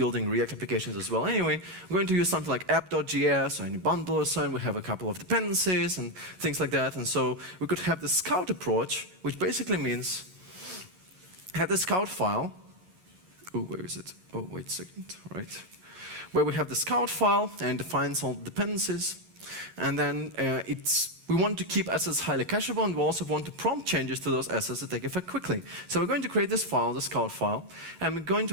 React applications as well anyway, we're going to use something like app.js or any bundle or so, and we have a couple of dependencies and things like that. And so we could have the scout approach, which basically means have the scout file. Oh, where is it? Oh, wait a second, right. Where we have the scout file and defines all the dependencies. And then we want to keep assets highly cacheable, and we also want to prompt changes to those assets to take effect quickly. So we're going to create this file, the scout file, and we're going to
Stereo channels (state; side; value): late; left; 11 ms